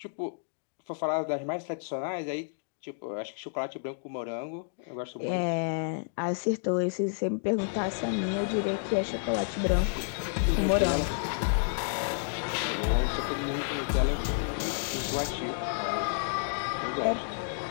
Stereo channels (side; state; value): right; silent; digital silence